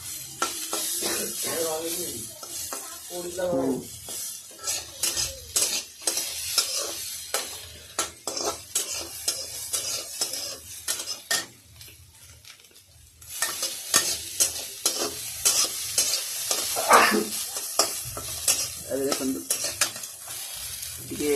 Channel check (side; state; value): both; identical; correlation 1.00